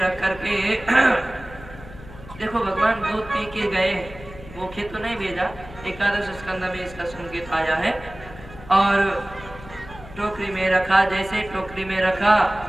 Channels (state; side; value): noise; left; hum, 17 dB below the sound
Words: रख करके देखो भगवान दूध पी के गए, भूखे तो नहीं भेजा। एकादश स्कंद में इसका संकेत आया है। और टोकरी में रखा, जैसे टोकरी में रखा